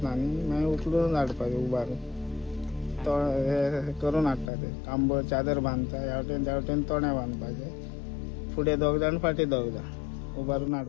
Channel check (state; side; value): drops out; right; at 4.5 s